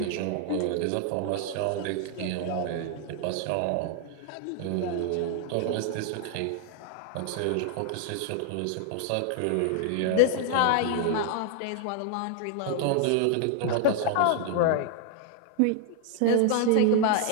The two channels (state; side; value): different; both; correlation 0.00